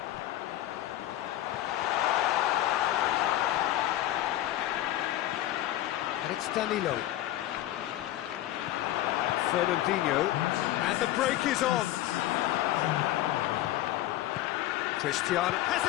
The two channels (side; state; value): right; quieter; 14.5 dB